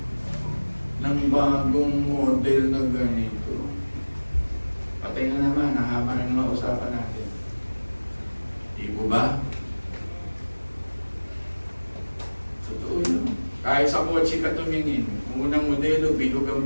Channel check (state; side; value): inverted; both; correlation -1.00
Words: ng bagong model na ganito. Patay na naman, nahaba na naman usapan natin. Di po ba? Totoo yun. Kahit sa kotse ka tumingin, unang modelo, bilog